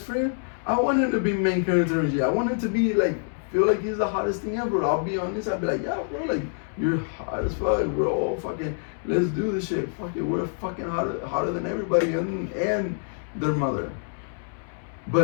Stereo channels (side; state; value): right; silent; 61 dB below the other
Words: friend, I want him to be main character energy. I want him to be like feel like he's the hottest thing ever. I'll be honest. I'll be like, yeah, bro, like you're hot as fuck. We're all fucking. Let's do this shit. Fuck it. We're fucking hotter than everybody and their mother.